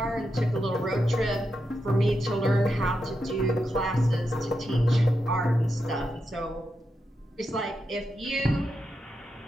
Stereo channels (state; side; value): normal; both; correlation 0.86